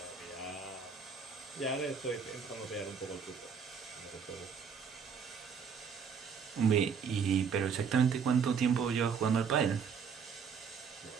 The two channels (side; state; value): left; quieter; 6.4 dB